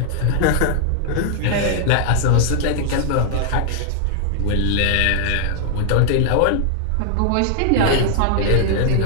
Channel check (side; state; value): both; different; correlation 0.00